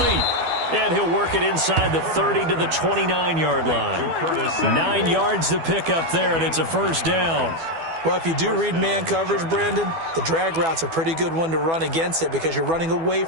And he'll work it inside the 30 to the 29-yard line. 9 yards to pick up there, and it's a 1st down. Well, if you do read man coverage, Brandon, the drag route's a pretty good one to run against it because you're running away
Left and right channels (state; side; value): late; left; 12 ms